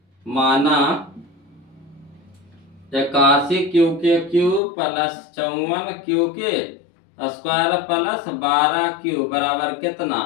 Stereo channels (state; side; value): drops out; right; at 4.6 s